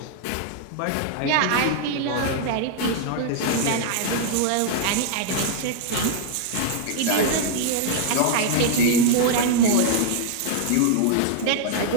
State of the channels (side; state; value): both; different; correlation 0.00